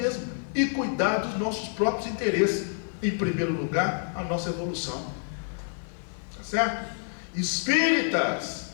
e cuidar dos nossos próprios interesses. Em primeiro lugar, a nossa evolução. Tá certo? Espíritas,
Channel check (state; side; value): silent; right; 59 dB below the other